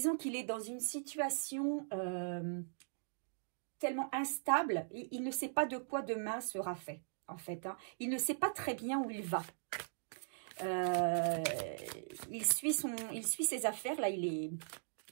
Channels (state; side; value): silent; left; digital silence